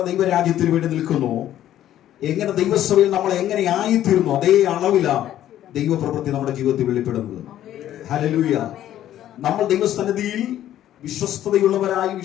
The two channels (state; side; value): quieter; right; 12.2 dB